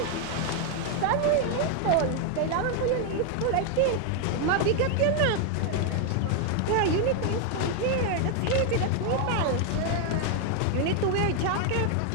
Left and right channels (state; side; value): different; both; correlation 0.01